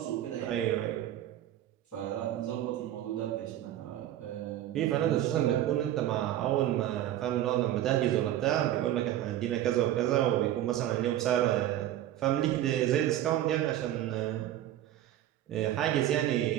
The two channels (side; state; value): left; quieter; 12.7 dB